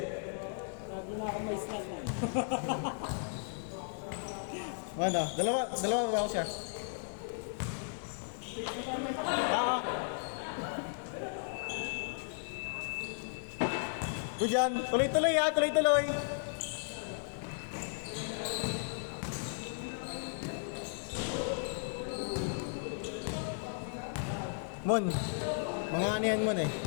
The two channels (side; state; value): right; silent; digital silence